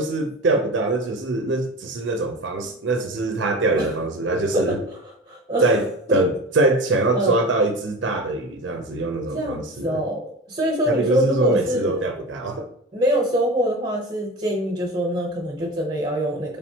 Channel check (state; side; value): normal; both; correlation 0.31